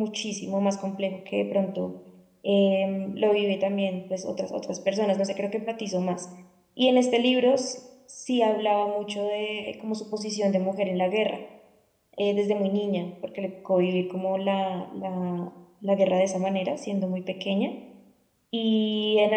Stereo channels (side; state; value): both; identical; correlation 1.00